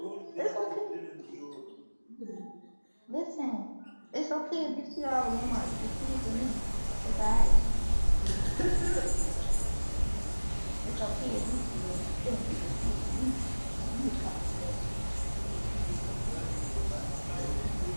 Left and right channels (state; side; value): inverted; both; correlation -1.00